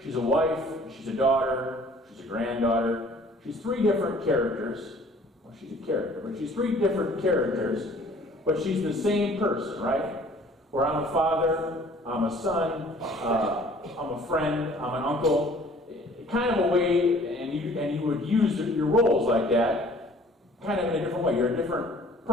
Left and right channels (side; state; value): both; normal; correlation 0.53